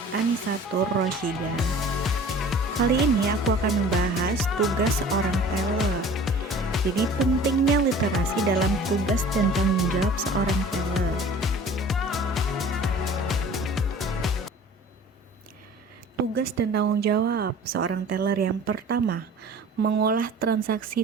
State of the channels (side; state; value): both; normal; correlation 0.45